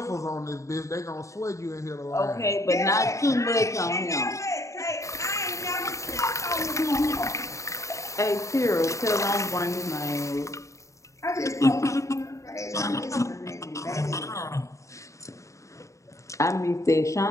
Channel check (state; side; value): late; right; 0.15 ms